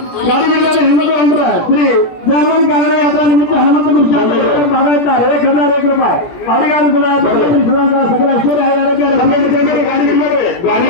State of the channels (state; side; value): late; right; 17 ms